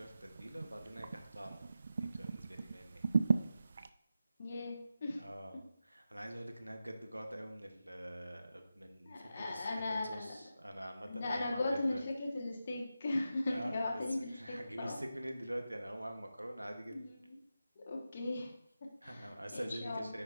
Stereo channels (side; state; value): both; inverted; correlation -0.90